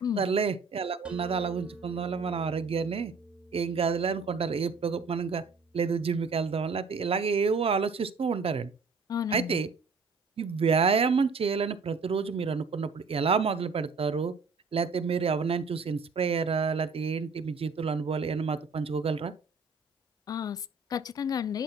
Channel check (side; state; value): left; quieter; 4.4 dB